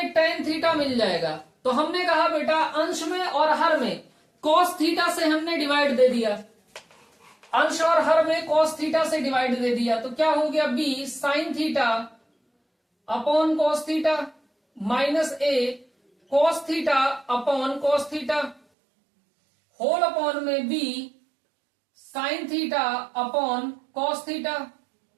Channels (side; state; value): left; drops out; at 18.6 s